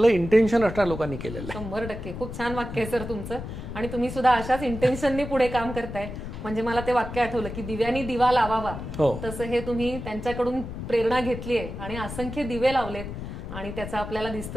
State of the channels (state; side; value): noise; left; rumble, 8 dB below the sound